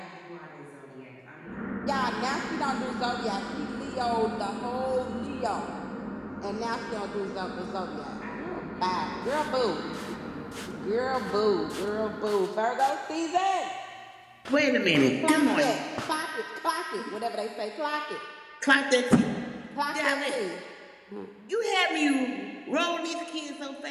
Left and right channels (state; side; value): identical; both; correlation 1.00